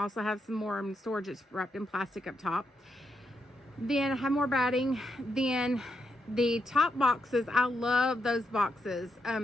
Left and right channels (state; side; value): normal; both; correlation 0.82